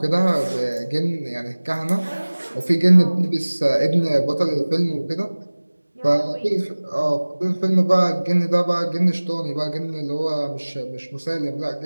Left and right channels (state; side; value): inverted; both; correlation -1.00